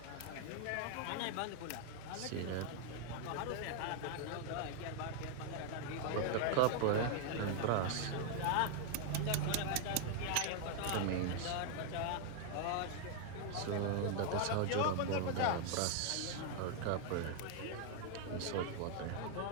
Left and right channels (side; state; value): both; different; correlation 0.00